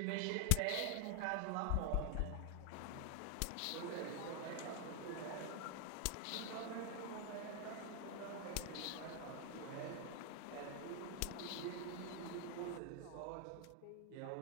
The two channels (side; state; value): both; different; correlation 0.00